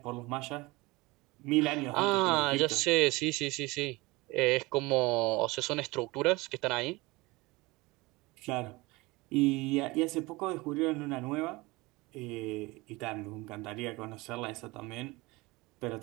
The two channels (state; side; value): quieter; left; 22.7 dB